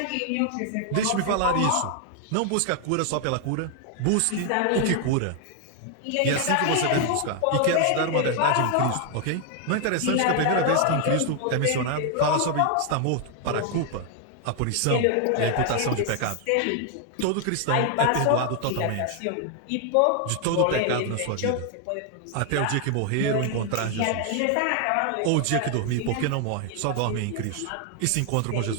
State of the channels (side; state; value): both; different; correlation 0.00